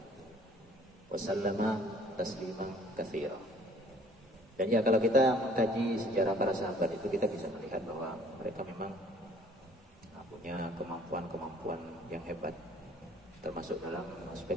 Wasallama tasliman katsira. Dan ya kalau kita mengkaji sejarah para sahabat itu, kita bisa melihat bahwa mereka memang punya kemampuan-kemampuan yang hebat, termasuk dalam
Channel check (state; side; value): normal; both; correlation 0.56